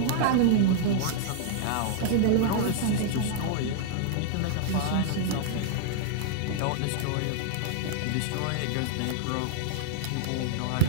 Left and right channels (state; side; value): different; both; correlation -0.01